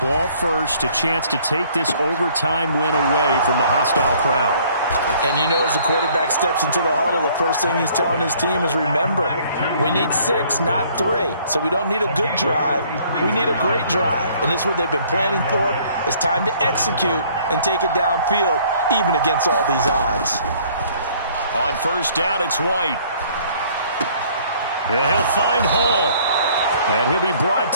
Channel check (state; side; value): inverted; both; correlation -0.59